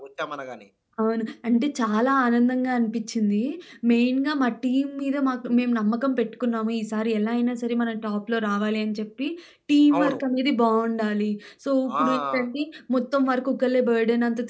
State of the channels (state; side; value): identical; both; correlation 1.00